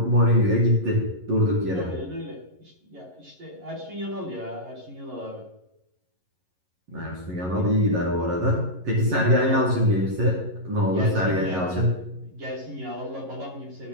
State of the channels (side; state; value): left; late; 11 ms